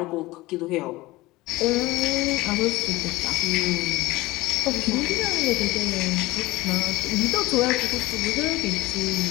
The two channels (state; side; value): quieter; right; 19.6 dB